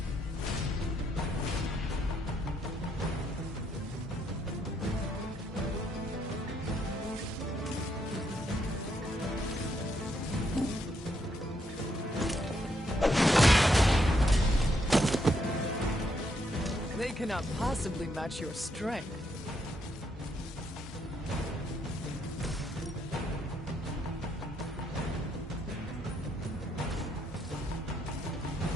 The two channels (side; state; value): both; normal; correlation 0.76